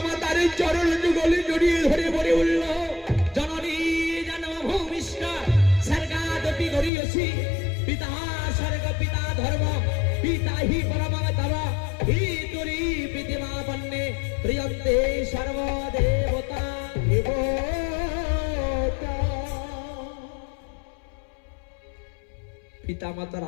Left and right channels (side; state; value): right; drops out; at 6.9 s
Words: মাতার চরণ যুগলে জড়িয়ে ধরে বলে উঠল, জননী জনম ভূমিষ্ঠ স্বর্গাদপি গরিয়সি পিতা স্বর্গ পিতা ধর্ম পিতা হি পরমং তব হি তুরি পিতিমা পন্নে প্রিয়ন্তে সর্বদেবতা দেবতা। পিতা মাতার